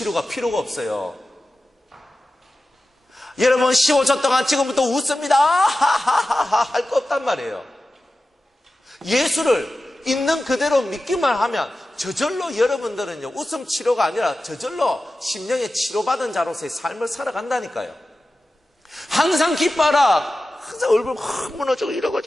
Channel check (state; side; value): normal; both; correlation 0.94